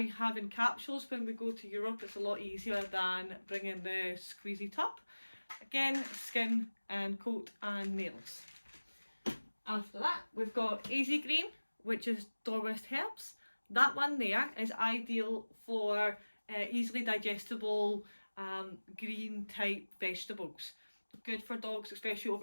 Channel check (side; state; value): both; inverted; correlation -1.00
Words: have in capsules when we go to Europe. It's a lot easier than bringing the squeezy tub. Again, skin and coat and nails. After that, we've got Easy Green, which is Dorwest herbs. That one there is ideal for easily digestible green type vegetables. Good for dogs, especially